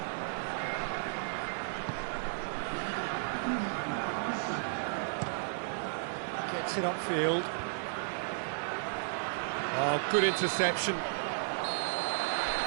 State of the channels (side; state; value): left; silent; digital silence